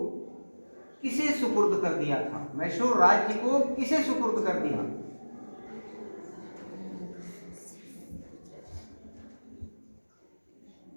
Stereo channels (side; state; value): both; inverted; correlation -1.00